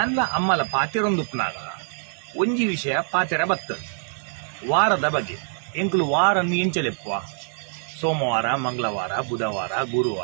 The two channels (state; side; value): silent; left; 56 dB below the other